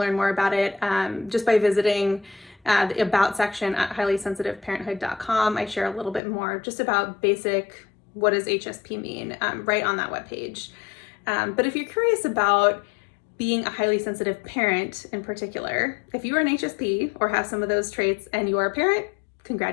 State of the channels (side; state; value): right; drops out; at 6.2 s